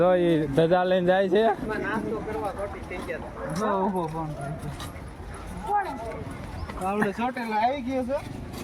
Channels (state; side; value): identical; both; correlation 1.00